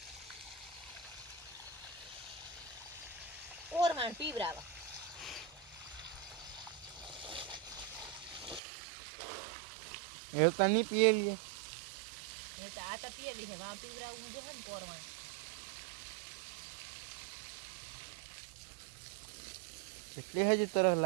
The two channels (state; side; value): drops out; left; at 8.6 s